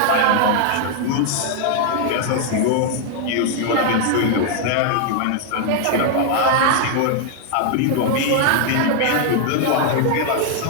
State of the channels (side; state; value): both; different; correlation 0.00